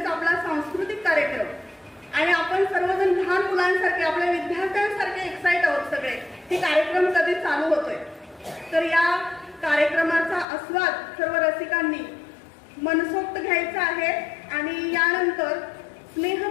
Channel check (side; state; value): right; drops out; at 10.5 s